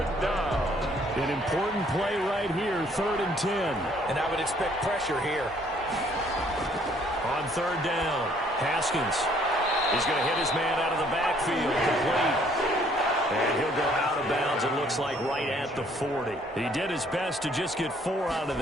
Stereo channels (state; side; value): normal; both; correlation 0.62